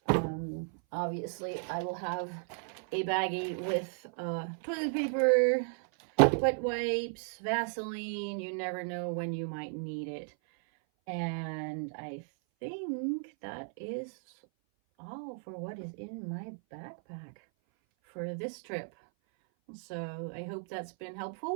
Obviously, I will have a baggie with toilet paper, wet wipes, Vaseline. You never know when you might need it. And I think that is all for what is in my backpack for this trip. So I hope that's been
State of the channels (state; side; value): silent; left; 55 dB below the other